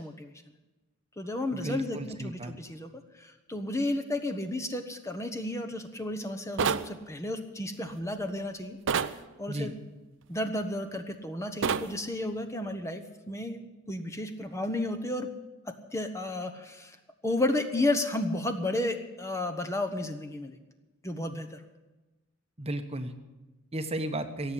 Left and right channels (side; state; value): both; normal; correlation 0.52